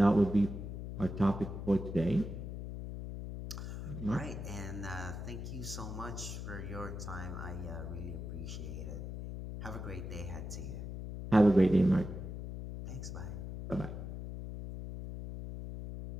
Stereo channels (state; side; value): noise; left; hum, 7 dB below the sound